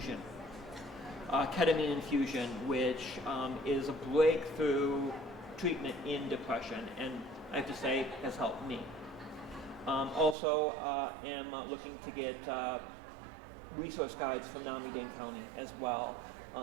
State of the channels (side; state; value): left; drops out; at 10.4 s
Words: ketamine infusion, which is a breakthrough treatment in depression, and I have to say has helped me. Also am looking to get resource guides from Miami-Dade County as well.